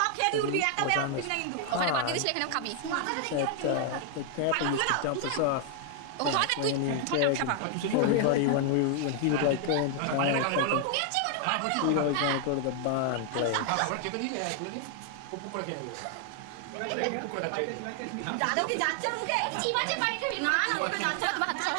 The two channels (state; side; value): different; both; correlation 0.00